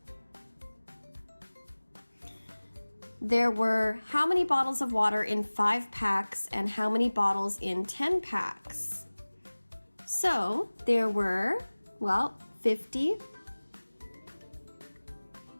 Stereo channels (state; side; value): inverted; both; correlation -1.00